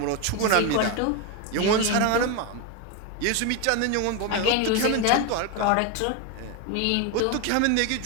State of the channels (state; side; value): different; both; correlation 0.02